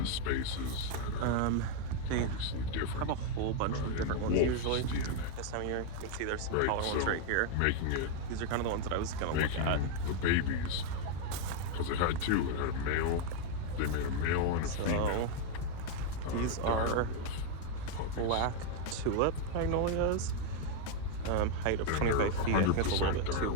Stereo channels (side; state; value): both; different; correlation 0.01